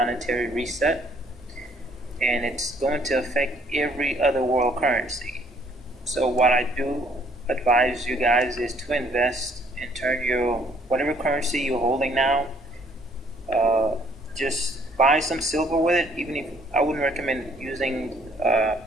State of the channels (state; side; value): normal; both; correlation 0.63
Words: reset, and it's going to affect every other world currency. So what I do advise you guys is to invest and turn your whatever currency you're holding now, just buy some silver with it. Even if I wouldn't recommend using